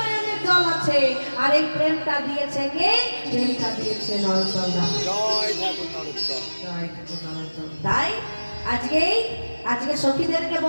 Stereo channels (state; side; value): inverted; both; correlation -1.00